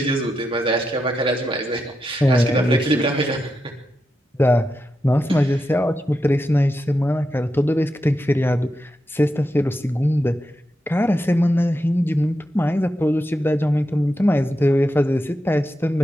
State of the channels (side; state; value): both; normal; correlation 0.87